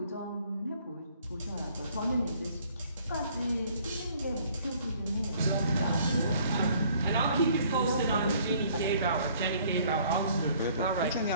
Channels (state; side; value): inverted; both; correlation -0.59